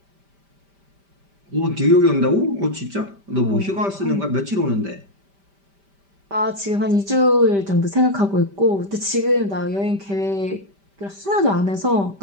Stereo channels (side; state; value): left; late; 5.1 ms